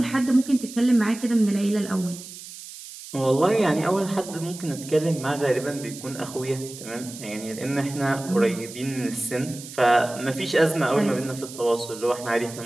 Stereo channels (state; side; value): noise; right; hiss, 14 dB below the sound